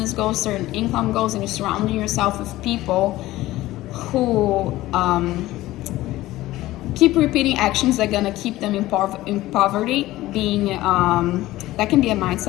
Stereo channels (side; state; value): right; quieter; 16.7 dB